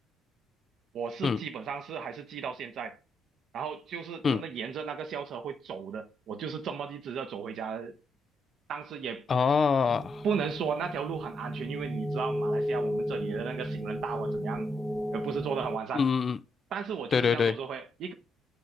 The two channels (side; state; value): both; normal; correlation 0.79